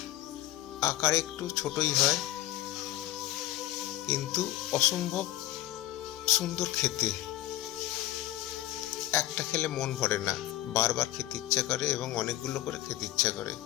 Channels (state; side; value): quieter; right; 14.7 dB